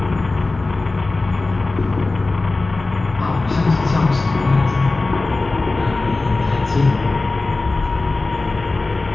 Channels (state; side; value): quieter; right; 3.3 dB